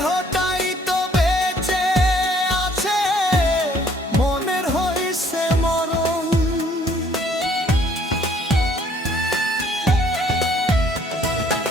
তো বেঁচে আছে, মনের হইছে মরণ।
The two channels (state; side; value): normal; both; correlation 0.61